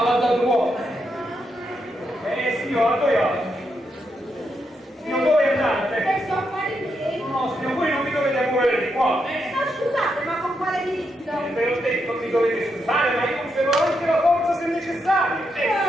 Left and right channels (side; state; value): both; normal; correlation 0.82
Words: Signor, signor, dove andate? Adesso a fare miei. No, signor, voi non mi dovete muovere di qua. Ma scusate, ma con quale diritto? Ve l'ho detto, mi dovete scusare, ma io conservo anche la forza se necessario.